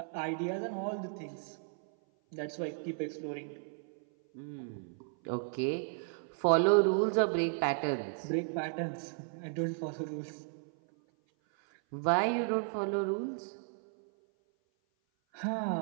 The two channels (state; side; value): silent; left; 55 dB below the other